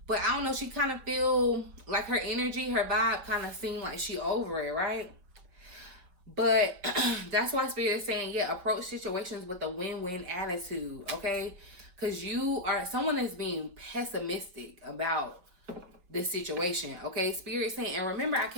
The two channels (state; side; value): late; left; 5.6 ms